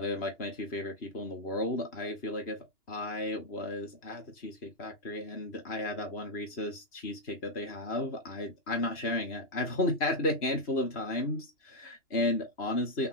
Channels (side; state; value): right; late; 2.9 ms